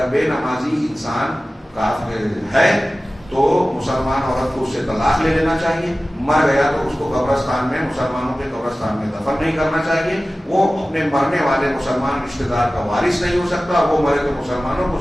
بے نمازی انسان کافر ہے تو مسلمان عورت کو اس سے طلاق لے لینا چاہیے. مر گیا تو اس کو قبرستان میں، مسلمانوں کے قبرستان میں دفن نہیں کرنا چاہیے. وہ اپنے مرنے والے مسلمان رشتہ دار کا وارث نہیں ہو سکتا. وہ مرے تو مسلمانوں کو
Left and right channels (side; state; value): both; normal; correlation 0.96